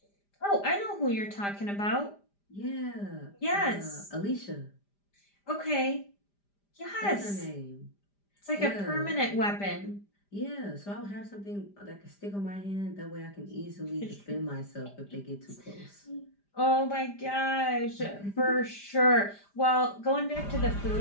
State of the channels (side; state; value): right; late; 5.0 ms